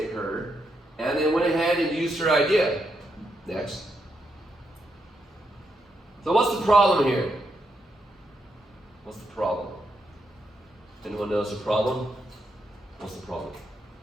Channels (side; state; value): both; normal; correlation 0.81